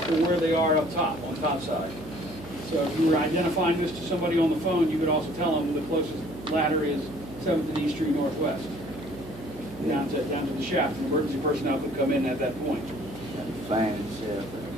where they are up top, on top side. So if you were identifying this to somebody on the phone, you could also tell them the closest ladder is 7th and East Street Northwest, down to the shaft. An emergency personnel could come in at that point. Fan shaft.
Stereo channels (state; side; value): noise; right; hum, 15 dB below the sound